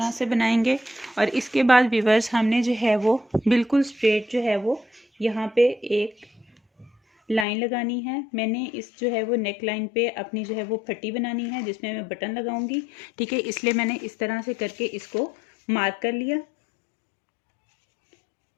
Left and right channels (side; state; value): right; drops out; at 7.5 s